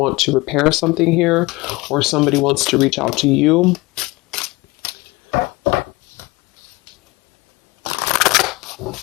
to repair something here, or somebody wants to reach out to you.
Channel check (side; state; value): right; quieter; 22.5 dB